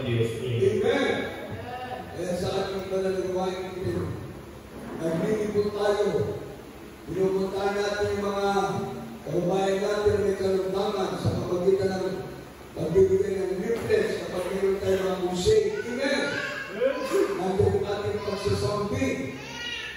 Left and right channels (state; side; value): identical; both; correlation 1.00